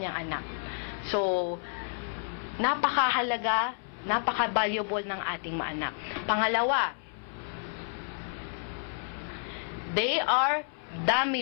niyang anak. So, napakahalaga, napaka-valuable ng ating mga anak. Pangalawa, they are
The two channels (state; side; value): silent; right; 58 dB below the other